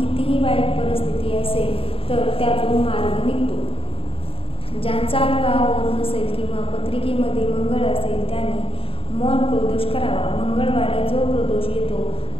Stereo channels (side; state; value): right; late; 0.27 ms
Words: वाईट परिस्थिती असेल तर त्यातून मार्ग निघतो. ज्यांचा विवाह होत नसेल किंवा पत्रिकेमध्ये मंगळ असेल त्यांनी मौन प्रदोष करावा. मंगळवारी जो प्रदोष येतो